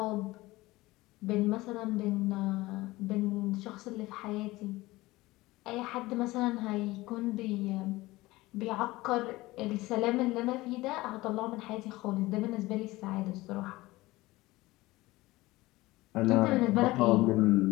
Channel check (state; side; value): quieter; right; 19.4 dB